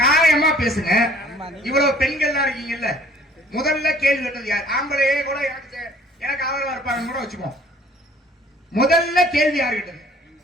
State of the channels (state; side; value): normal; both; correlation 0.55